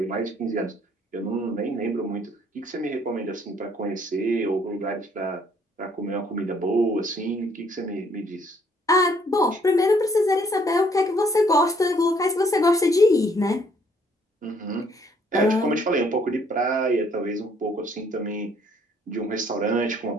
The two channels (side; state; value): both; normal; correlation 0.64